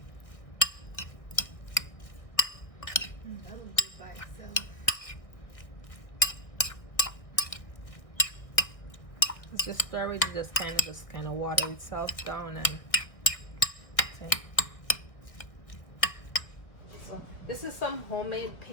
That'll do by itself. Just stir it, just kind of water itself down, and see. So this is some homemade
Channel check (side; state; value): right; late; 1.3 ms